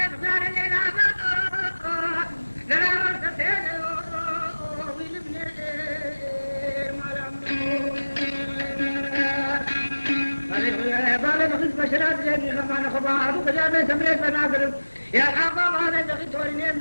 غير الليلة لا مرتين ويلبني بالي بخيت بشرات جابي خمان خبار وكجابي سمريت بناقر يا حباب هذا بخي توريني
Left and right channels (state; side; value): inverted; both; correlation -1.00